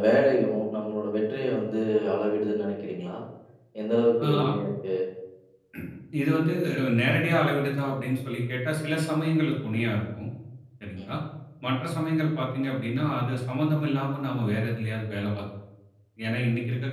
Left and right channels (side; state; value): both; identical; correlation 1.00